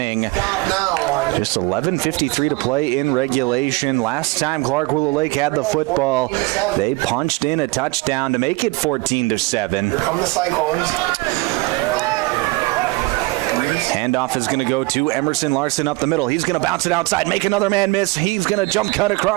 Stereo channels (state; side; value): quieter; left; 22.7 dB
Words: Just 11:53 to play in regulation. Last time Clark Willow Lake had the football, they punched in a touchdown to make it 14-7. Here come the Cyclones. Handoff is going to go to Emerson Larson up the middle. He's going to bounce it outside, make another man miss. He's going to jump cut